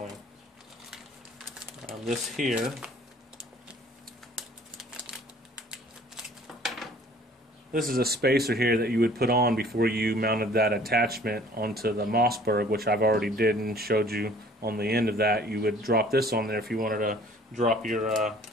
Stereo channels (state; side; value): normal; both; correlation 0.53